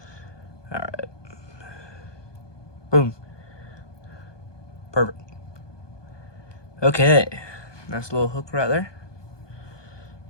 Alright. Boom. Perfect. Okay. Nice little hook right there.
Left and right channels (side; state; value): right; late; 1.2 ms